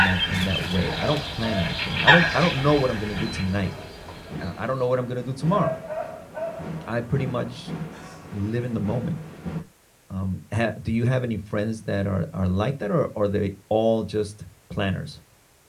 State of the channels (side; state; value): both; identical; correlation 1.00